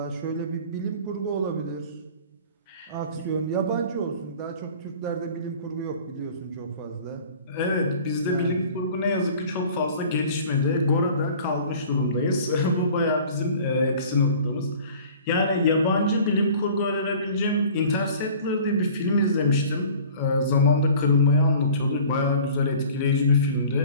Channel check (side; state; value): both; inverted; correlation -0.46